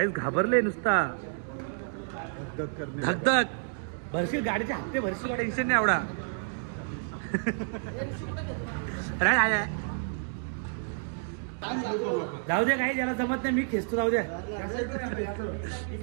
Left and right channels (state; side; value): silent; left; 58 dB below the other